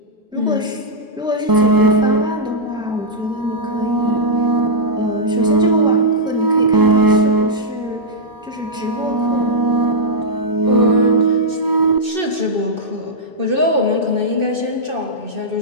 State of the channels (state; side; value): normal; both; correlation -0.09